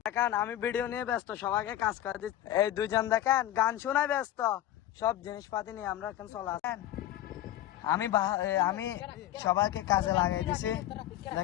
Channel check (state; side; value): quieter; right; 13.0 dB